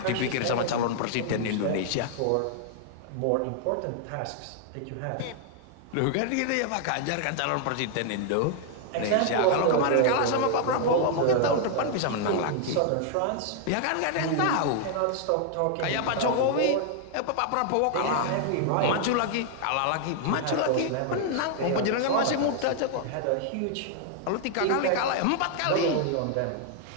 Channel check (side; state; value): both; different; correlation 0.00